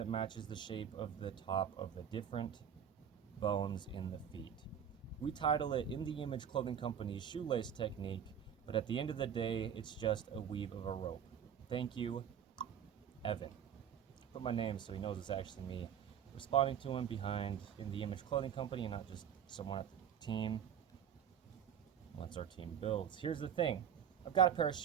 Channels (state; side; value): quieter; left; 8.6 dB